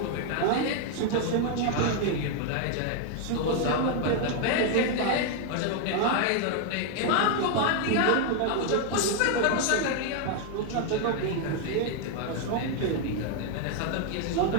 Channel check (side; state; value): both; different; correlation 0.00